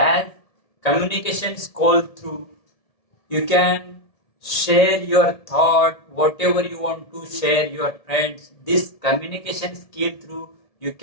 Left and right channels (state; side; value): late; right; 1.7 ms